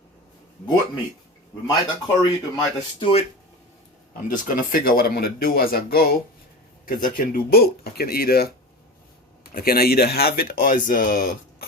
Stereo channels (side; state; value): both; normal; correlation 0.29